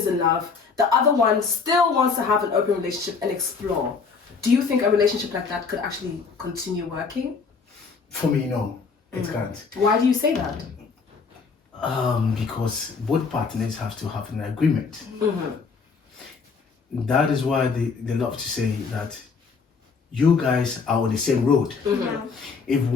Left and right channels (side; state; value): right; quieter; 5.1 dB